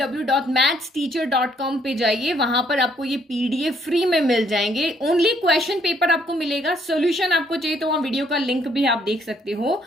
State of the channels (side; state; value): both; normal; correlation 0.67